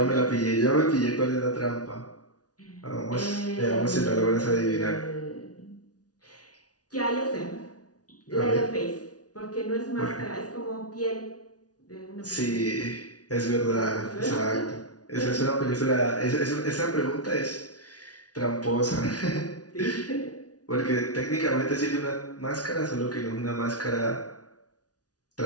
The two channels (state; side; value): late; right; 0.68 ms